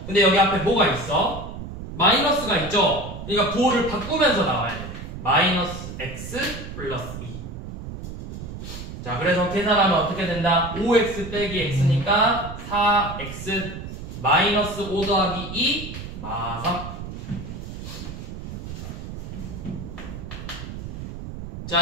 근데 여기 앞에 뭐가 있어? 마이너스가 있죠? 그러니까 부호를 바꾸면서 나와야 돼. 마이너스 x 플러스 2. 자, 그래서 계산하면 어떻게 된다? 5x 빼기 x니까 4x 마이너스 5 더하기 2 마3.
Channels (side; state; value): right; noise; rumble, 9 dB below the sound